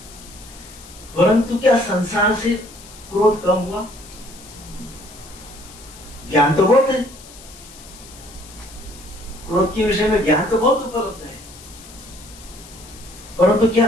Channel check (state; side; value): noise; left; hiss, 19 dB below the sound